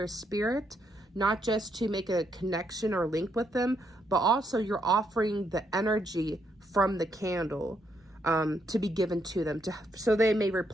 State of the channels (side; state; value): both; normal; correlation 0.76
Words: spirit, not just to make a connection or link with them, but also you're offering the energy from the candle to be given to them, so they may